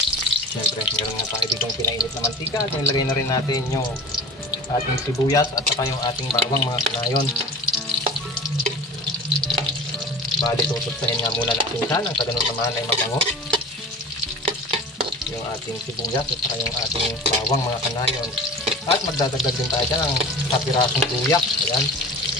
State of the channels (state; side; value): normal; both; correlation 0.38